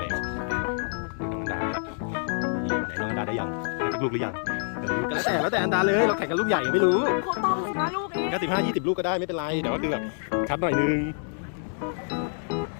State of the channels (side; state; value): right; silent; 60 dB below the other